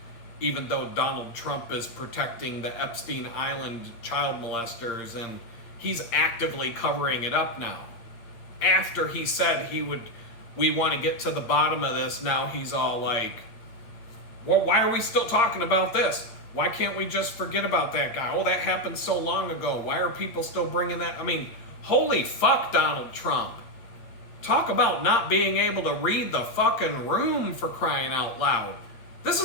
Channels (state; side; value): late; right; 8.7 ms